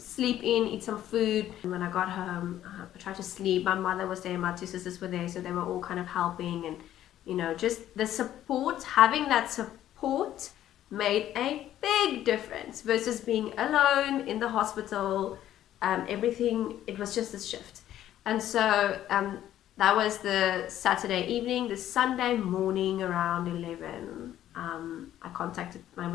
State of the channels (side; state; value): right; quieter; 12.2 dB